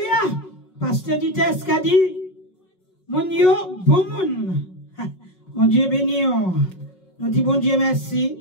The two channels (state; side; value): late; right; 5.4 ms